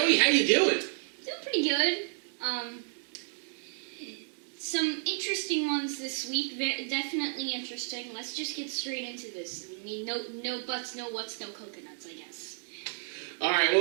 how you doing? Doing pretty good. Some interesting ones this week. Definitely interesting. Let's just get straight into this. I mean, no buts, no whats, no coconuts, I guess. All right,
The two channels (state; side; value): silent; left; 57 dB below the other